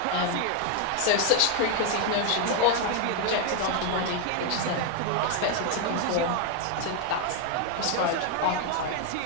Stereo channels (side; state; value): both; different; correlation 0.01